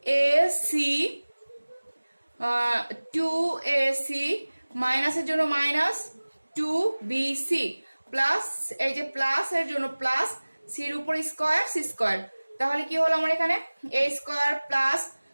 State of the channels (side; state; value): both; inverted; correlation -1.00